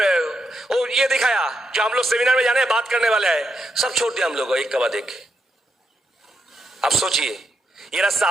और ये दिखाया, जो हम लोग सेमिनार में जाने बात करने वाले हैं, सब छोड़ दिया हम लोग एक के बाद एक। आप सोचिए, ये रास्ता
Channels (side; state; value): both; normal; correlation 0.82